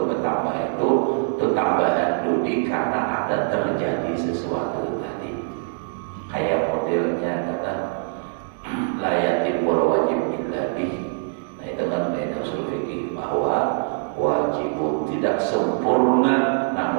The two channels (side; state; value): left; silent; digital silence